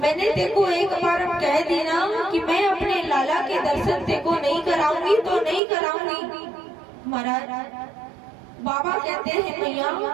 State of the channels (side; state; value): left; drops out; at 5.6 s